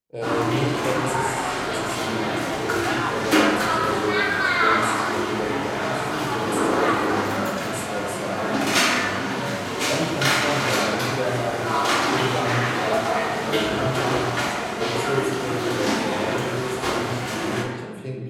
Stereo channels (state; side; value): identical; both; correlation 1.00